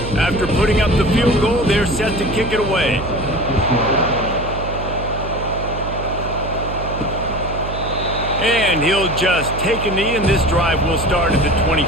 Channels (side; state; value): right; noise; hum, 8 dB below the sound